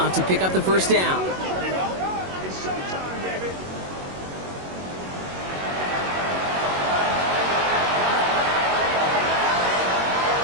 to pick up the first down.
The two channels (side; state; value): left; late; 22 ms